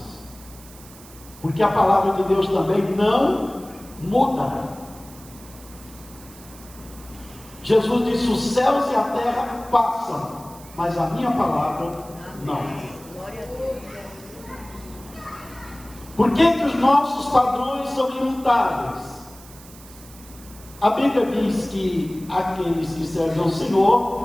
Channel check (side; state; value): right; noise; hiss, 20 dB below the sound